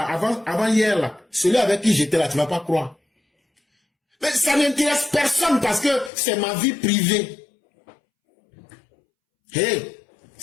avant hier là, celui avec qui j'étais là, tu ne vas pas croire. Mais ça n'intéresse personne parce que c'est ma vie privée. Hey,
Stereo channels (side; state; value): right; drops out; at 6.1 s